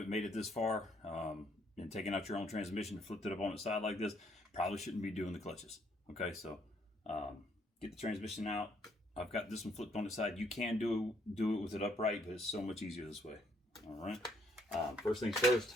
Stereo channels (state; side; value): normal; both; correlation 0.69